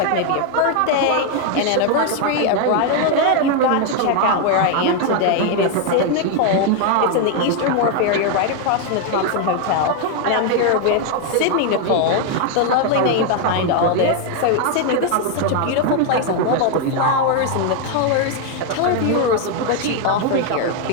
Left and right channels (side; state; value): both; different; correlation 0.01